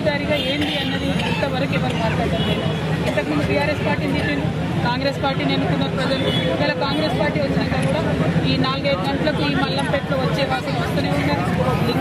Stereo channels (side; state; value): both; identical; correlation 1.00